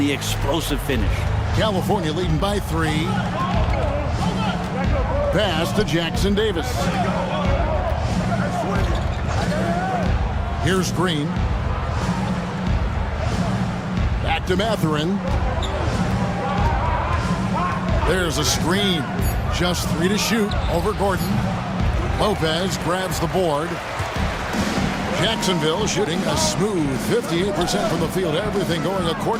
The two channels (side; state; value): both; identical; correlation 1.00